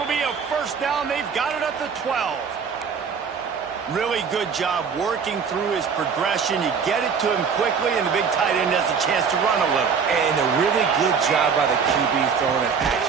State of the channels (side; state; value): left; quieter; 6.2 dB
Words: be a first down. They've got it at the 12. Really good job working through his progression. You get it to him quickly, and the big tight end has a chance to run a little. And a really good job by the QB throwing an